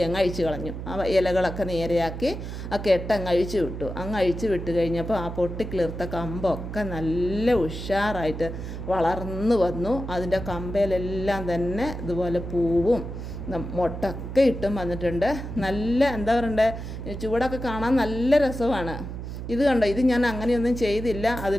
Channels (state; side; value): noise; right; hum, 8 dB below the sound